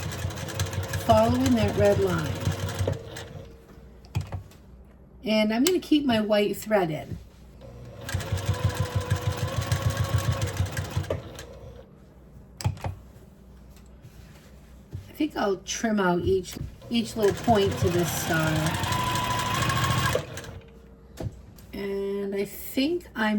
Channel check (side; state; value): both; identical; correlation 1.00